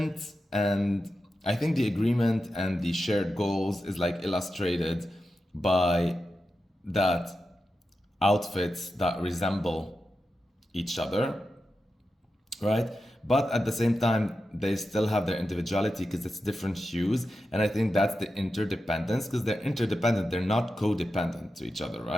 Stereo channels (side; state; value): both; normal; correlation 0.90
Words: and I think the agreement and the shared goals is like illustrated by that outfits that resemble each other, right? But at the same time, they still have their individuality because it's different hues. And I think that's the interdependence, because they're interdependent. They're not codependent to each other,